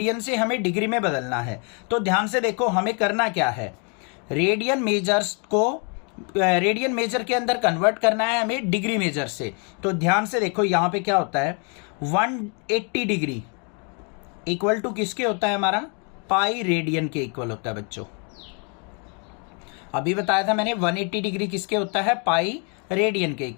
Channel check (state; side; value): quieter; right; 36.9 dB